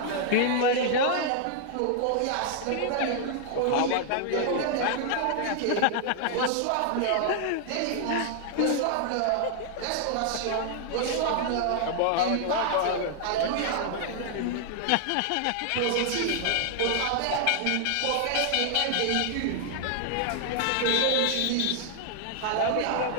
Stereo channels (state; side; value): different; both; correlation 0.00